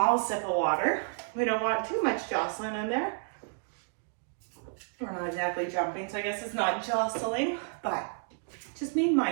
sip of water. We don't want too much jostling in there. We're not exactly jumping, so I guess it's not jostling, but just being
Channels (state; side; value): silent; left; 57 dB below the other